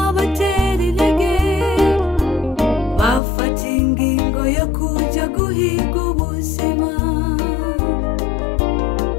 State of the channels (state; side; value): drops out; right; at 3.2 s